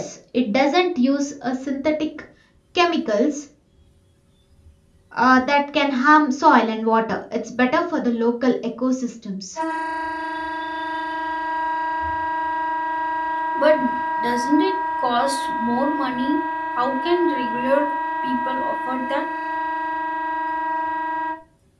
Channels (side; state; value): both; identical; correlation 1.00